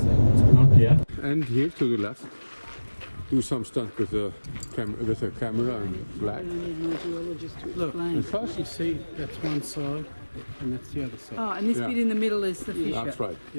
not yet. And here to the left, do some stunt with a camera and flag. Look, And first you see, that's one side and that's the other side. Oh, and this bit in the middle is the fisher. That's right.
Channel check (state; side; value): inverted; both; correlation -1.00